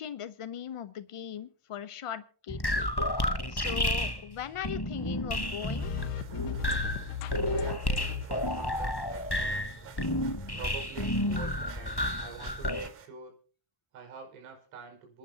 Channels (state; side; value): late; right; 1.1 ms